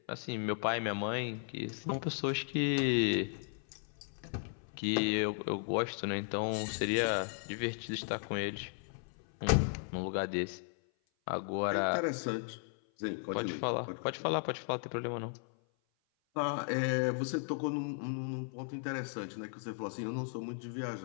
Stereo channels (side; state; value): right; silent; 54 dB below the other